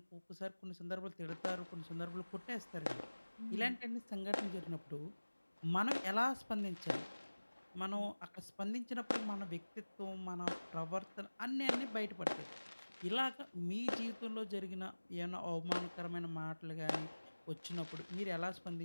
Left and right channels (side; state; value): both; inverted; correlation -1.00